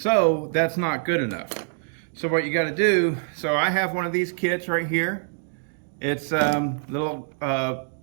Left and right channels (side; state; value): left; silent; digital silence